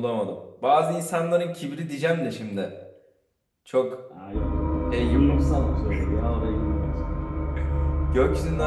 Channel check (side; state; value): both; identical; correlation 1.00